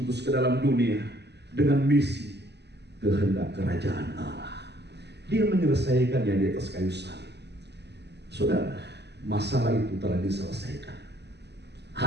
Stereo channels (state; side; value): late; left; 0.49 ms